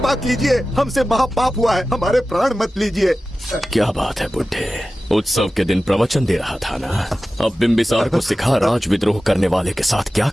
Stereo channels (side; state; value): both; normal; correlation 0.95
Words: कीजिए, हमसे महापाप हुआ है, हमारे प्राण मत लीजिए। क्या बात है बुड्ढे, उत्सव के दिन प्रवचन दे रहा था ना। अब बिंबिसार को सिखा राज विद्रोह करने वाले के साथ क्या